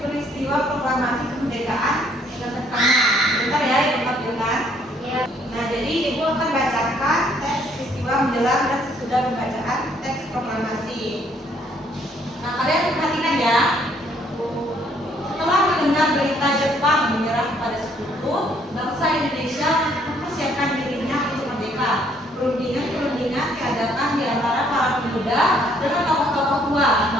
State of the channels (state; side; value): normal; both; correlation 0.65